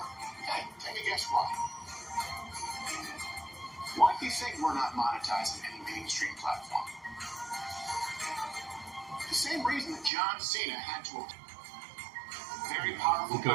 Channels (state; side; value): drops out; left; at 10.1 s